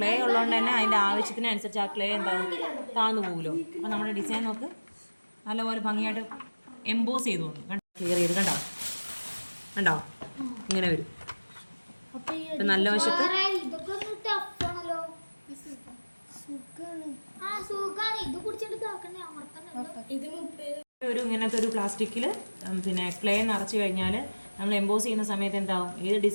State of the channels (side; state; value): both; inverted; correlation -1.00